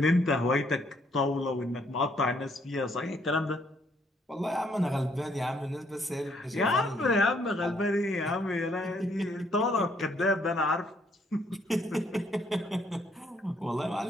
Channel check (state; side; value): normal; both; correlation 0.69